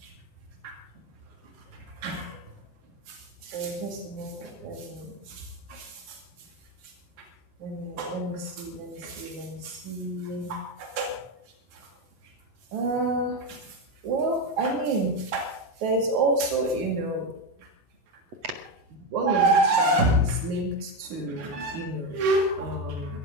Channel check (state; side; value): late; left; 8.3 ms